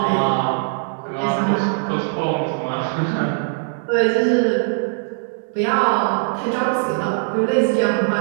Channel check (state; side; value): silent; left; 65 dB below the other